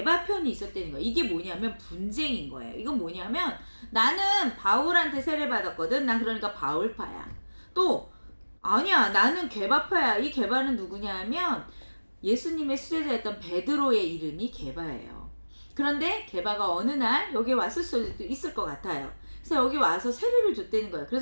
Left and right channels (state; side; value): inverted; both; correlation -1.00